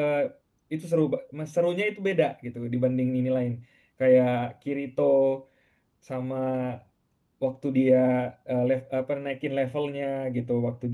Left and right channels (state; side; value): identical; both; correlation 1.00